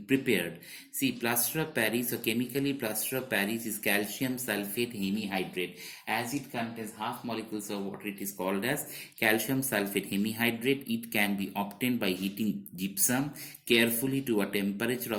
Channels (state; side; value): identical; both; correlation 1.00